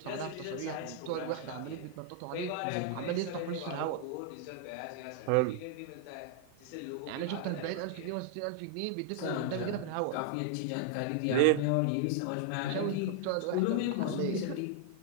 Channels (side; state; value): both; different; correlation 0.00